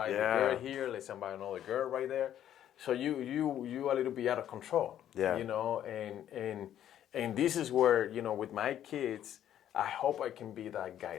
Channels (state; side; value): quieter; right; 10.9 dB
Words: the girl here. Let's invite another girl right there. So you a little bit out of control. Yeah. And this is where with my kids, I hope I can be that